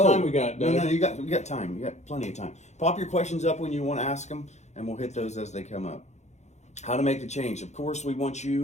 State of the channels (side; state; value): right; late; 0.33 ms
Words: we got, Doug? No, we got time. You got plenty of time. Pop your questions up when you want to ask them and we'll hit those as they come up. How to make the change. Of course, we want